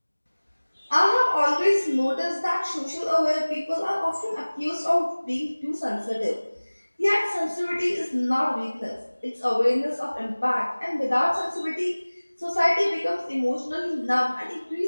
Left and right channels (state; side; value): inverted; both; correlation -1.00